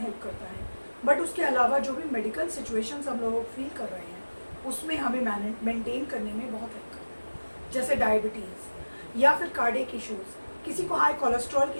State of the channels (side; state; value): both; inverted; correlation -1.00